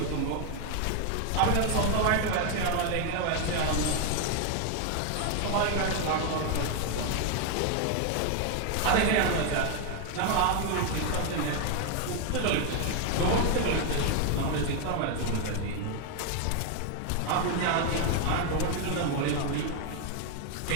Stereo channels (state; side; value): different; both; correlation 0.01